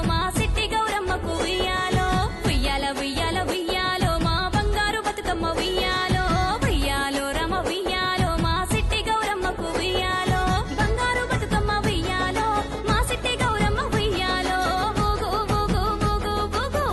మా సిట్టి గౌరమ్మకు ఉయ్యాలో ఉయ్యాల ఉయ్యాల ఉయ్యాలో మా బంగారు బతుకమ్మ ఉయ్యాలో ఉయ్యాలో రమ ఉయ్యాలో మా సిట్టి గౌరమ్మకు ఉయ్యాలో బంగారు బతుకమ్మ ఉయ్యాలో మా సిట్టి గౌరమ్మ ఉయ్యాలో ఊగు ఊగు ఊగు ఊగు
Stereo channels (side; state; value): both; identical; correlation 1.00